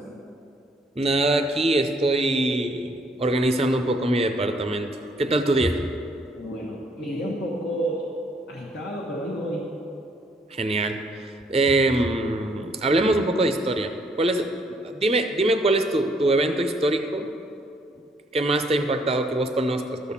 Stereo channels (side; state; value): both; normal; correlation 0.66